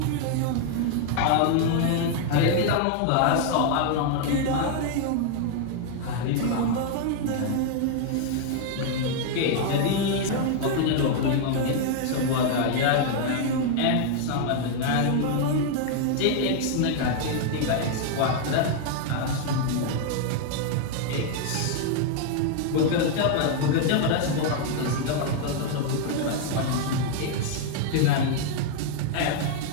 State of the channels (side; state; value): both; different; correlation 0.00